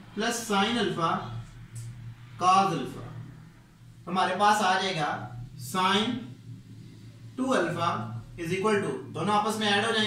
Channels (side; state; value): both; identical; correlation 1.00